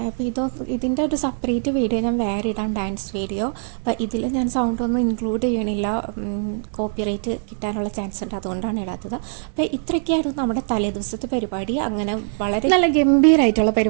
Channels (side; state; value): left; silent; digital silence